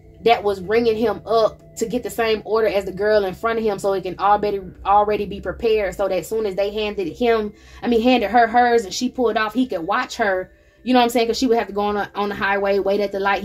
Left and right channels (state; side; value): identical; both; correlation 1.00